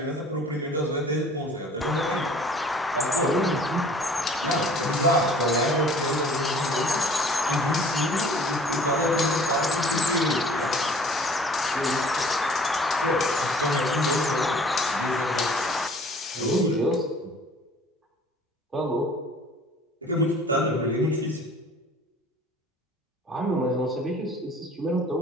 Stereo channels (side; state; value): both; normal; correlation 0.51